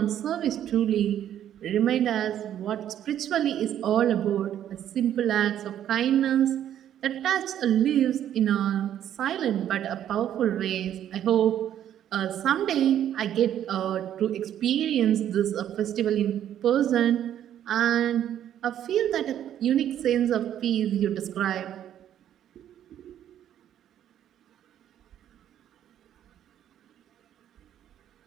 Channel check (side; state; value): left; quieter; 10.7 dB